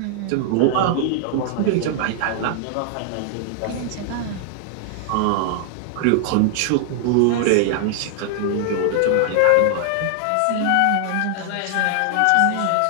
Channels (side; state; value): both; different; correlation 0.00